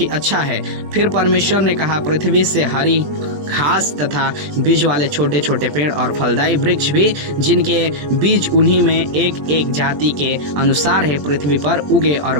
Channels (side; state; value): left; late; 21 ms